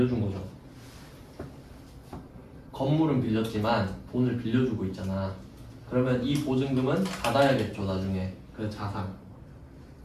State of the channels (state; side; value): identical; both; correlation 1.00